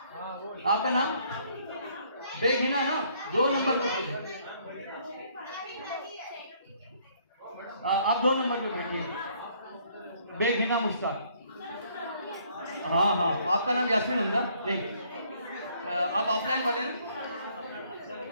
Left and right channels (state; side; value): inverted; both; correlation -0.64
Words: आपका नाम बेगहिना ना, 2 नंबर पे, आप 2 नंबर पे बैठिए, बेगहिना मुश्ताक। हाँ हाँ, आपका नाम यास्मीन हमजा नहीं, आप ऑफलाइन वाले ना,